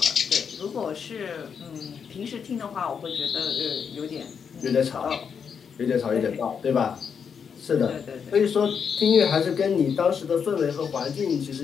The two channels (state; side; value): quieter; right; 6.8 dB